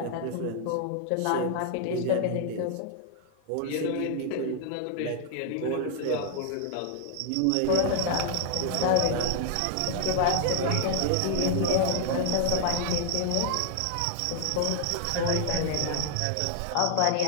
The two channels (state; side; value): different; both; correlation -0.01